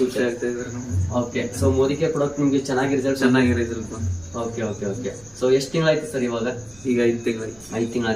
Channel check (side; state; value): right; noise; rumble, 26 dB below the sound